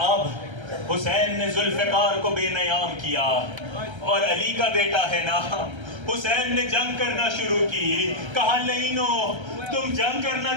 اب حسین نے ذوالفقار کو بے نیام کیا، اور علی کا بیٹا ہے نا، حسین نے جنگ کرنا شروع کی۔ کہا لینو تم جنگ کرنا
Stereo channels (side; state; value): left; late; 1.3 ms